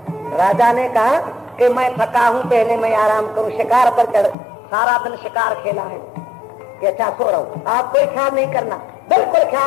राजा ने कहा कि मैं थका हूं, पहले मैं आराम करूं। शिकार पर चढ़, सारा दिन शिकार खेला है कि अच्छा सो रहा हूं। आप कोई ख्याल नहीं करना, बिल्कुल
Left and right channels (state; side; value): drops out; right; at 4.4 s